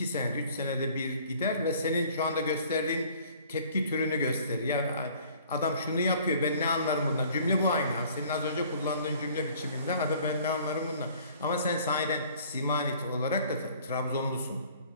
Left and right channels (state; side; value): inverted; both; correlation -0.53